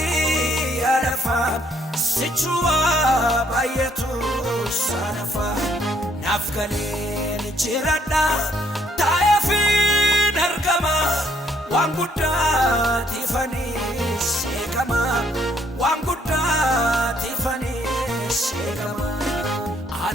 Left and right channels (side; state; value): both; normal; correlation 0.68